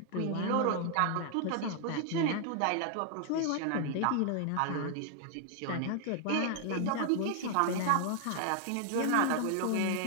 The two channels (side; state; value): both; different; correlation 0.00